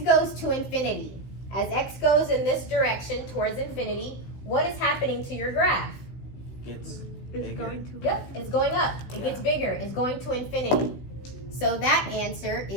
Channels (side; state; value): right; late; 16 ms